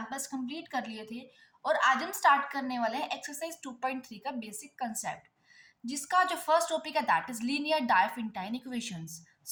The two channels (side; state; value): both; identical; correlation 1.00